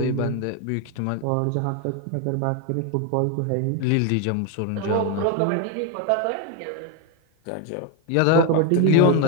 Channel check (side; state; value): both; different; correlation 0.02